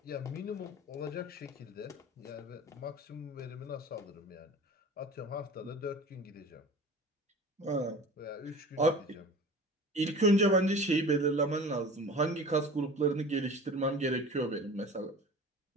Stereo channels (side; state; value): both; normal; correlation 0.39